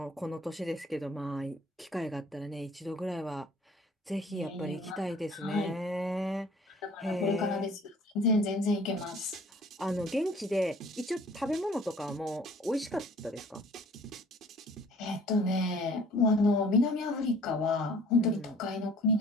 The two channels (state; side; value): normal; both; correlation 0.52